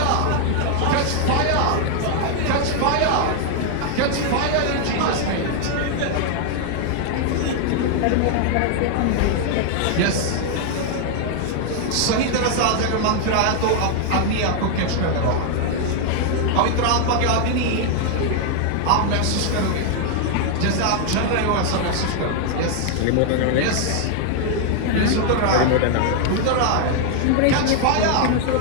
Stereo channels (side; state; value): both; different; correlation 0.00